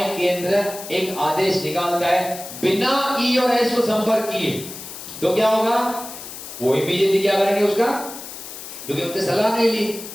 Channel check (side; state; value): left; noise; hiss, 12 dB below the sound